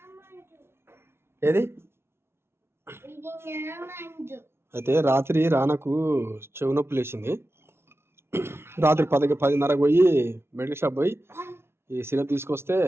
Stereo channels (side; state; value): left; late; 0.12 ms